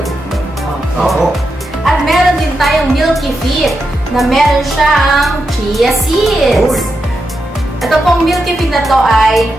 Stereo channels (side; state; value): both; normal; correlation 0.86